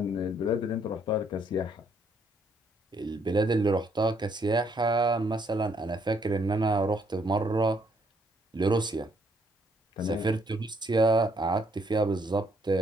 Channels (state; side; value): normal; both; correlation 0.70